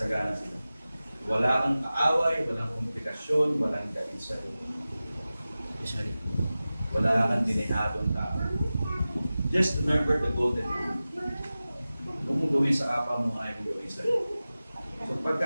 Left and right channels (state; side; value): inverted; both; correlation -0.96